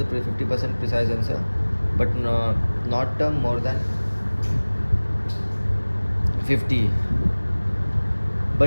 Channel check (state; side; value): inverted; both; correlation -1.00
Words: 50% precise answer, but not more than 50.